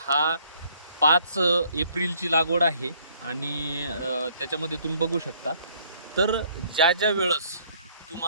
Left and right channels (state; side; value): inverted; both; correlation -0.62